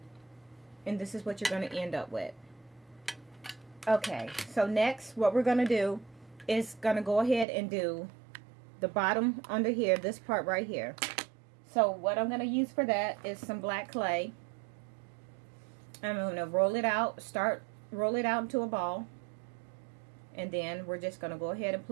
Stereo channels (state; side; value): drops out; left; at 7.5 s